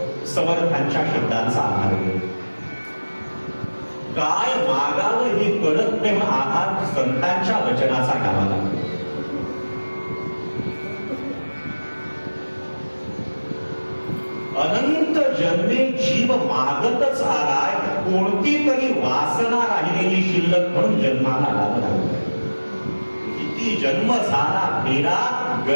समर्थांच्या शब्दांचा आधार घेऊन। काय मागावं हे कळत नाही म्हणून आधार संतांच्या वचनाचा घ्यावा लागतो। अनंत जन्मे जीव मागतच आलाय, कोणती तरी वासना राहिलेली शिल्लक म्हणून जन्माला आला। किती जन्म झाला फेरा,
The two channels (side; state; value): both; inverted; correlation -1.00